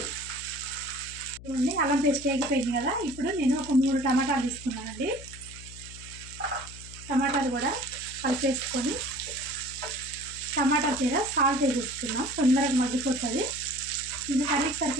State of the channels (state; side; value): noise; left; hum, 15 dB below the sound